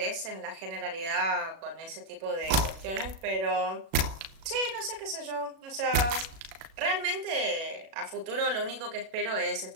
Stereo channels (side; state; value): left; late; 37 ms